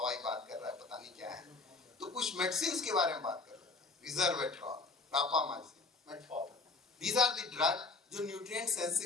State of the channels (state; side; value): quieter; right; 3.8 dB